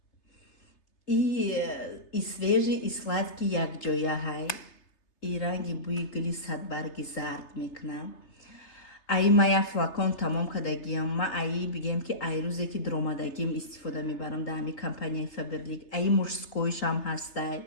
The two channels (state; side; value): late; right; 3.3 ms